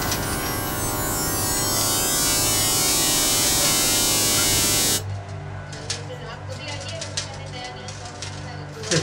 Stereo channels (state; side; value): identical; both; correlation 1.00